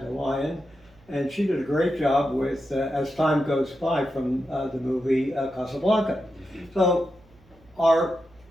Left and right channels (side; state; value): right; noise; hum, 29 dB below the sound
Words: Lyon, and she did a great job with As Time Goes By from the movie Casablanca. So our